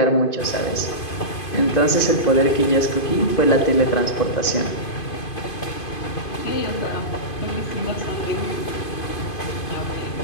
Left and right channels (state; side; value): late; right; 2.5 ms